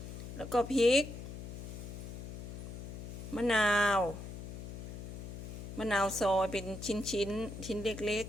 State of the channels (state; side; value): noise; left; hum, 9 dB below the sound